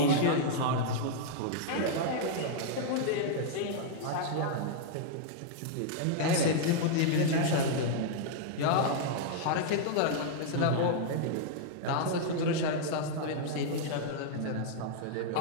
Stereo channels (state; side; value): different; both; correlation -0.01